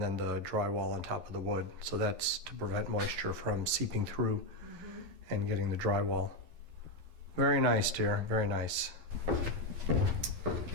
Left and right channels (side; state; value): left; late; 12 ms